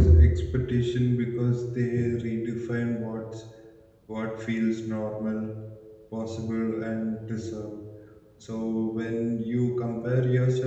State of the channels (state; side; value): identical; both; correlation 1.00